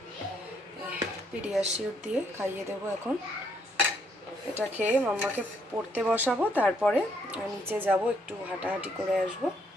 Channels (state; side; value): normal; both; correlation 0.71